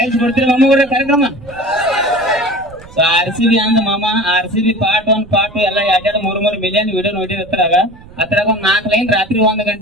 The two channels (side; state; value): right; noise; rumble, 21 dB below the sound